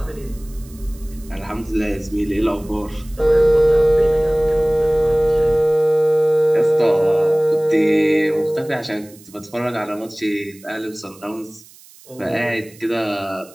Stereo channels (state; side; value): noise; right; hiss, 24 dB below the sound